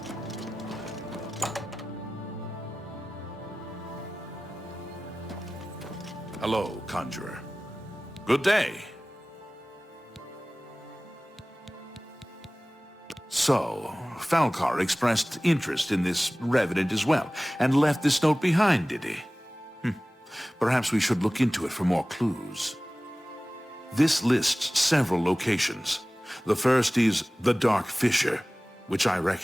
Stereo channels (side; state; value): both; normal; correlation 0.97